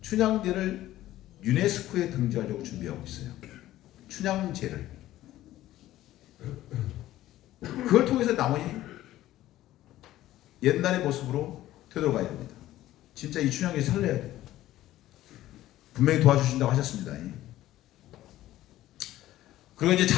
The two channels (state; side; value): quieter; right; 14.6 dB